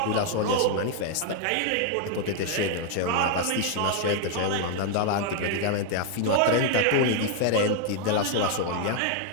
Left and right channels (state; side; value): different; both; correlation 0.00